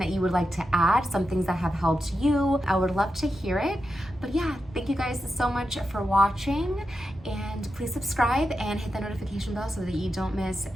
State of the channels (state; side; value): normal; both; correlation 0.88